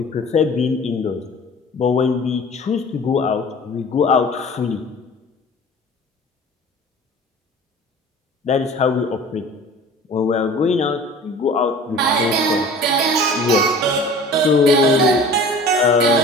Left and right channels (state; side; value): normal; both; correlation 0.43